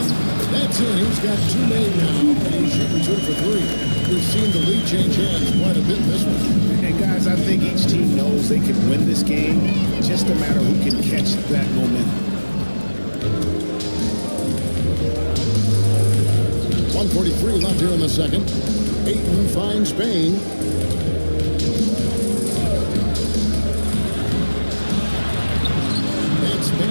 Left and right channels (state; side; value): inverted; both; correlation -1.00